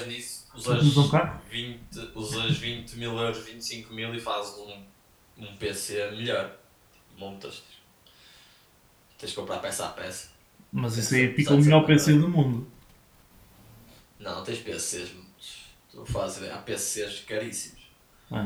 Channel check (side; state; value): both; identical; correlation 1.00